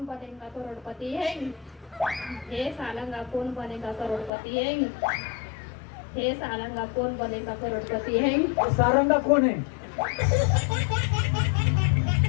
बनेगा करोड़पति है हे सालंगा कौन बनेगा करोड़पति है हे सालंगा कौन बनेगा करोड़पति है सारंगा कोण आहे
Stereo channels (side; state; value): right; drops out; at 4.3 s